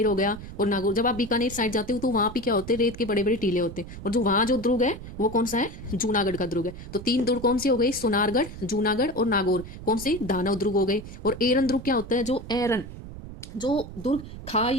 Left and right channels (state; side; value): noise; right; rumble, 12 dB below the sound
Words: हो गया और नागौर, जब आप बीकानेर साइड जाते हो तो वहां पे क्या होते हैं? रेत के बड़े बड़े टीले होते हैं। और जो वहां जो दुर्ग है वो कौन सा है? जूनागढ़ का दुर्ग है। तो 3 दुर्ग कौन से हो गए? सोनारगढ़, जूनागढ़ और नागौर। कौन से? दानव दुर्ग हो गए। और एरन दुर्ग क्या होता है? जो दुर्ग